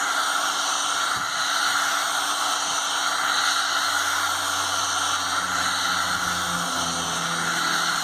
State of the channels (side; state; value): both; identical; correlation 1.00